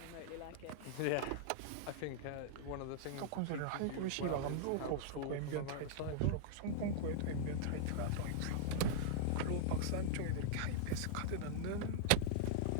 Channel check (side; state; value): both; different; correlation -0.01